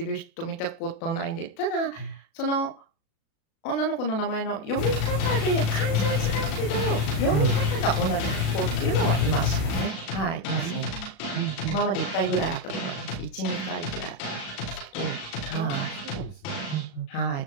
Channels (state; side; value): late; right; 36 ms